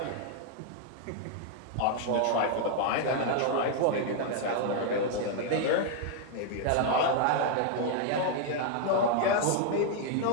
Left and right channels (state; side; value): different; both; correlation 0.00